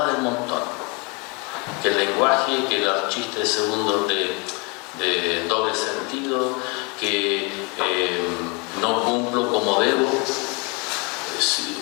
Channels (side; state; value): right; quieter; 30.7 dB